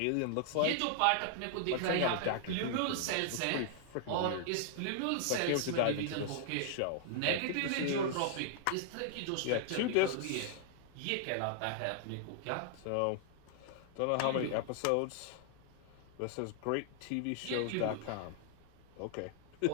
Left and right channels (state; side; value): different; both; correlation -0.01